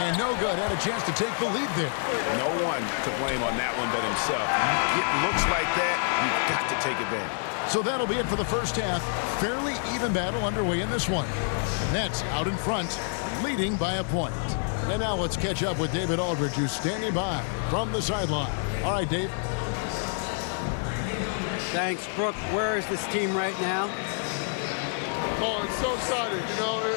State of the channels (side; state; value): right; silent; 60 dB below the other